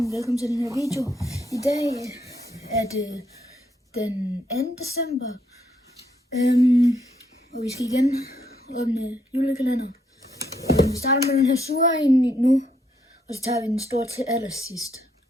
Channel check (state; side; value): normal; both; correlation 0.74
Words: velkommen til den her video. I dag er det den 2. december, og vi skal igen åbne julekalender. Vi starter med den her sure ind nu, og så tager vi den store til allersidst.